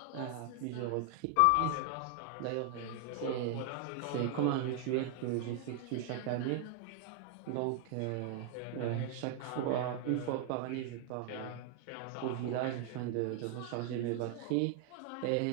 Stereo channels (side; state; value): both; different; correlation 0.00